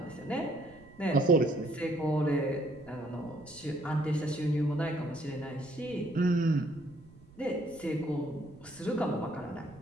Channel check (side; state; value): right; noise; rumble, 23 dB below the sound